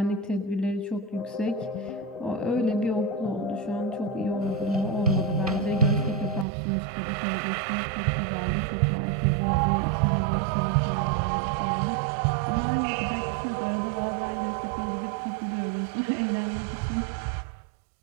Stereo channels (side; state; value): left; drops out; at 6.5 s